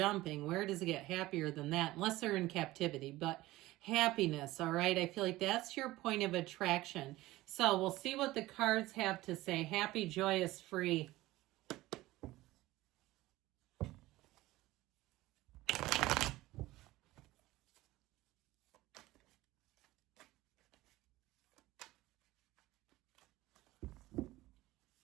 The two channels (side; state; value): left; quieter; 17.8 dB